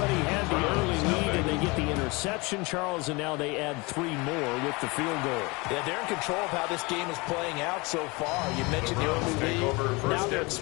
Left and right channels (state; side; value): quieter; right; 26.1 dB